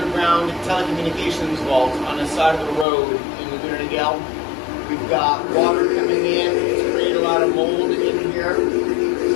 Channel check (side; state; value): right; drops out; at 2.9 s